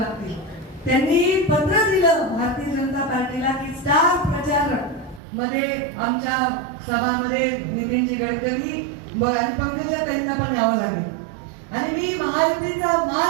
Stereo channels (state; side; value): drops out; left; at 5.2 s